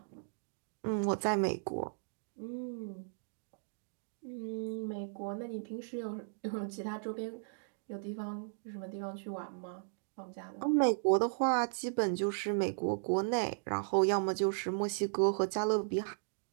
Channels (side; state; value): left; silent; digital silence